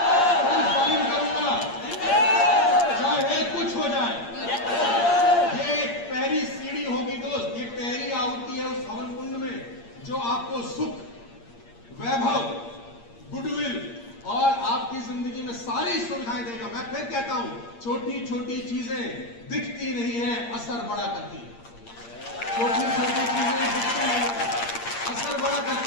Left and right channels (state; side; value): late; right; 8.6 ms